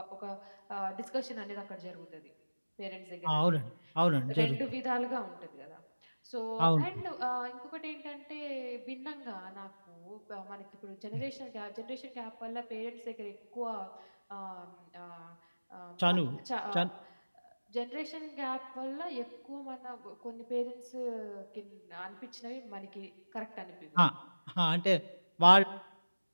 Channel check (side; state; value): both; inverted; correlation -1.00